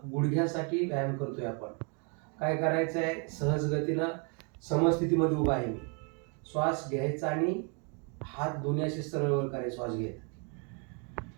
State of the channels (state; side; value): quieter; left; 37.2 dB